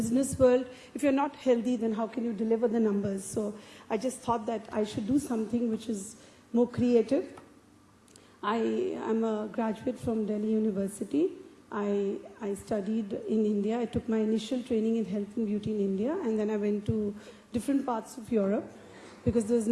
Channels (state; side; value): identical; both; correlation 1.00